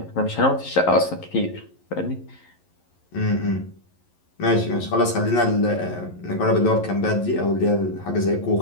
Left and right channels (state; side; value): late; right; 11 ms